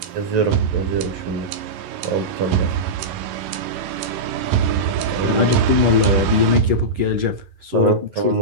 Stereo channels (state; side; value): late; left; 11 ms